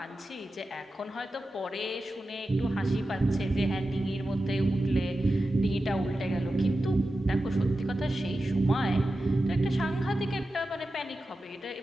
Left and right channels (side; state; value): both; normal; correlation 0.93